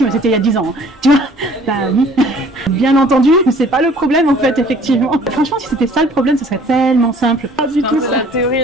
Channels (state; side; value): normal; both; correlation 0.54